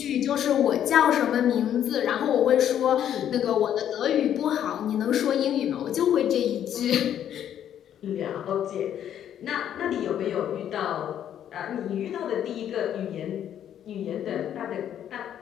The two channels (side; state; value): right; quieter; 10.1 dB